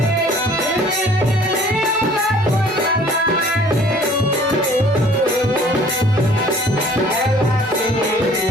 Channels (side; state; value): both; normal; correlation 0.53